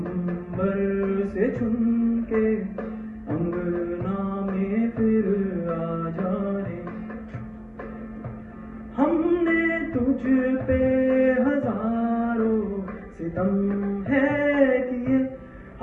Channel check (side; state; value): both; identical; correlation 1.00